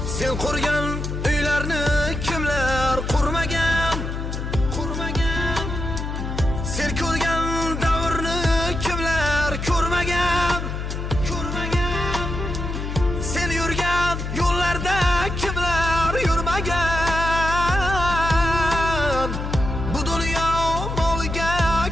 Sen qurgan uylarni kimlar qurmagan? Sen ko'rgan davrni kimlar ko'rmagan? Sen yurgan yo'llarda kimlar yurmagan? Bu dunyo moliga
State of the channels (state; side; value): noise; left; hum, 4 dB below the sound